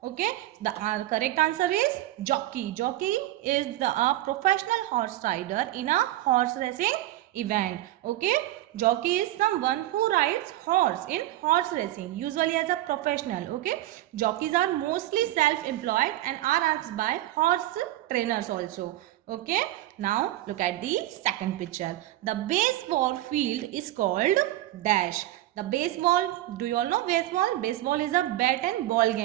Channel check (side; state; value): left; quieter; 15.3 dB